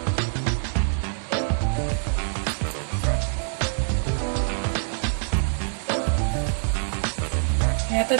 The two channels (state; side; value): silent; left; digital silence